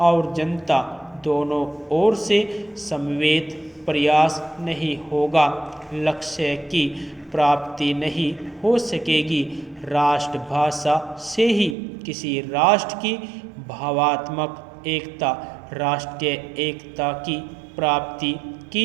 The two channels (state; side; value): drops out; left; at 11.8 s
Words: जनता दोनों ओर से समवेत प्रयास नहीं होगा, लक्ष्य की प्राप्ति नहीं हो सकेगी। राष्ट्रभाषा से ही किसी राष्ट्र की भावात्मक एकता, राष्ट्रीय एकता की प्राप्ति